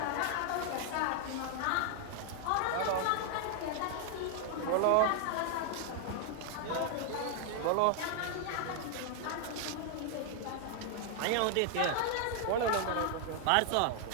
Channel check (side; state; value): both; different; correlation 0.00